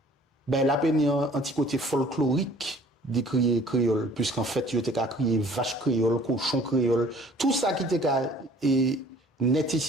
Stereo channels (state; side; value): normal; both; correlation 0.53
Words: ben la peine un petit côté folklorique d'écrire créole puisqu'en fait il était qu'à crier vache créole, cochon créole, tout ça qui était qu'à net